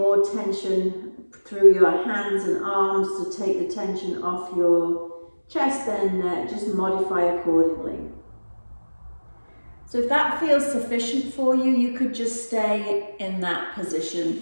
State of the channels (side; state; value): both; inverted; correlation -1.00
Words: tension through your hands and arms to take the tension off your chest, then just modify accordingly. So if that feels sufficient for you, you could just stay in that position,